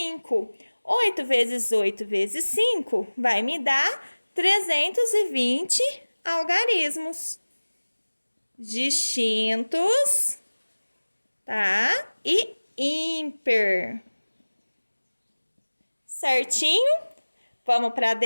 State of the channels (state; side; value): inverted; both; correlation -1.00